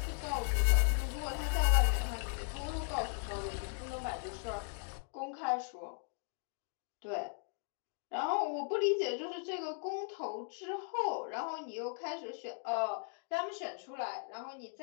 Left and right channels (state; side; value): silent; right; 53 dB below the other